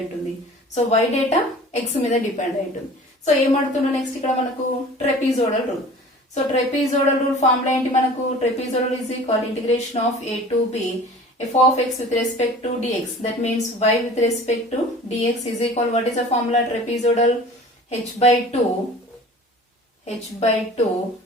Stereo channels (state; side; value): normal; both; correlation 0.44